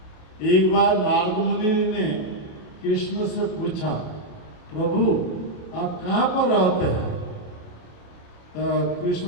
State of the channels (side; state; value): right; late; 28 ms